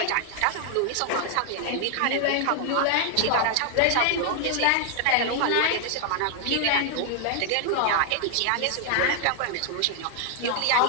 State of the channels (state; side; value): different; both; correlation 0.00